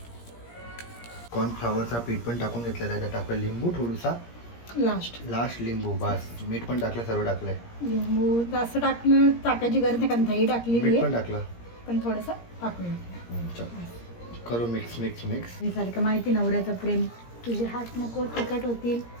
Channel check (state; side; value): late; right; 17 ms